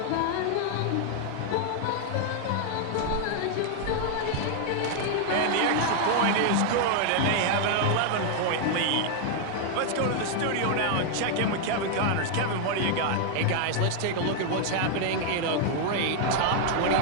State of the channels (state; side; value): different; both; correlation 0.00